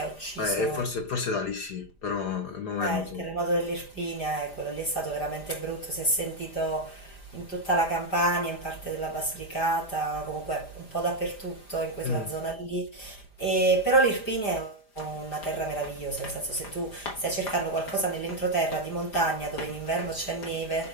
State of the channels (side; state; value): right; late; 5.0 ms